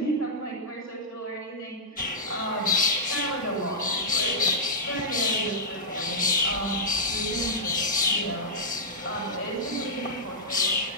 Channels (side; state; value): both; normal; correlation -0.09